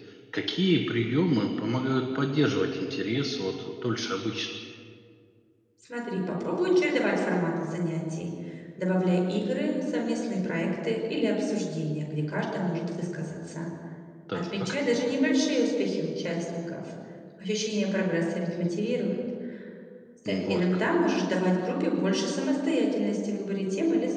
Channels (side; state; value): both; identical; correlation 1.00